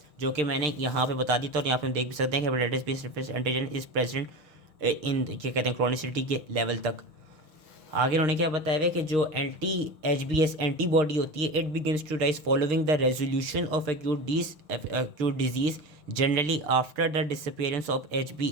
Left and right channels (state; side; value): late; left; 6.6 ms